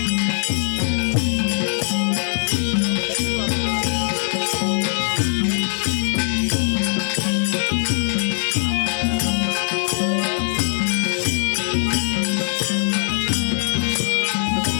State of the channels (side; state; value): right; silent; digital silence